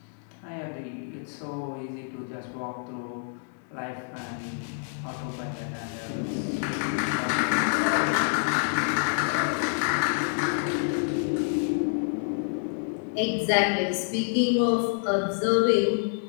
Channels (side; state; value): right; silent; digital silence